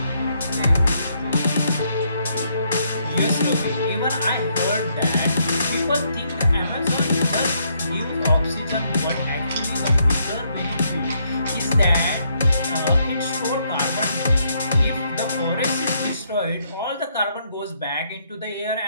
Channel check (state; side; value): inverted; both; correlation -0.73